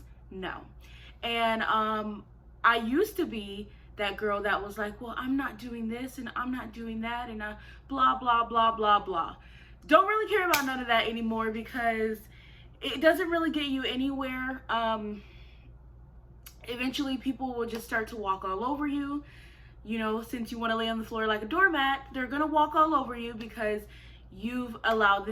No. And I used to be that girl that was like, well, I'm not doing this and I'm not doing that and blah, blah, blah, blah, blah. Don't really care about none of that anymore because it doesn't really get you anywhere. Eventually people will just start to walk all over you. You know, since you want to lay on the floor like a doormat, they're going to walk all over you because you've allowed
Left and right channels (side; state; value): both; identical; correlation 1.00